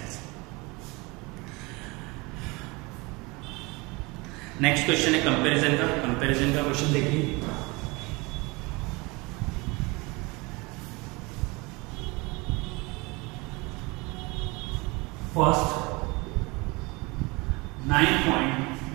नेक्स्ट क्वेश्चन है कंपैरिजन का। कंपैरिजन का क्वेश्चन देखिए, फर्स्ट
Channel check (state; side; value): quieter; left; 25.6 dB